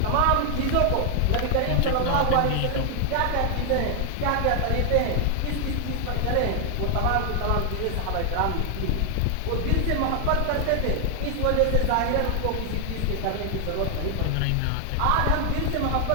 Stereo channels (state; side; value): different; both; correlation 0.00